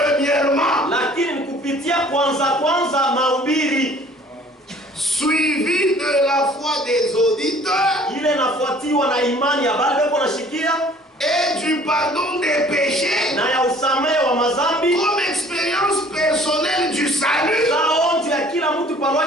lakini kupitia kwanza mahubiri suivi de la foi des auditeurs ile nafuatiwa na imani ya bale beko nashikia et du pardon des péchés na ya usamehe wa mazambi comme expérience personnelle du salut. saonjo ya kila mtu kwa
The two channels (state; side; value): normal; both; correlation 0.53